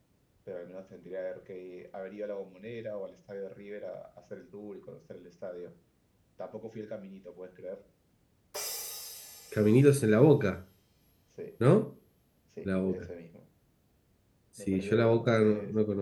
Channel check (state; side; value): identical; both; correlation 1.00